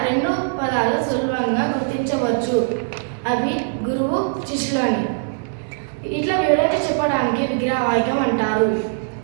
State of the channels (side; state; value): left; silent; 60 dB below the other